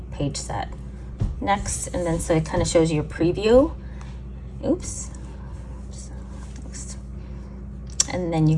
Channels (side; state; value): both; identical; correlation 1.00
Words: page set. Next, and then so it kind of shows you your preview. Oops. Next. And then you